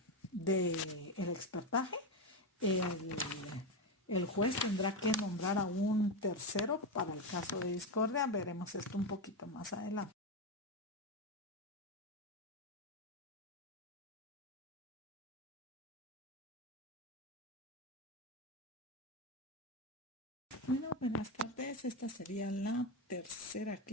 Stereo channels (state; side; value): normal; both; correlation 0.11